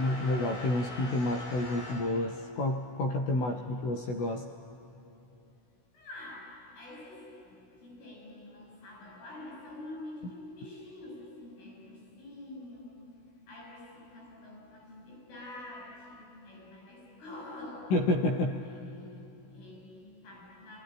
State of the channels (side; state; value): right; late; 16 ms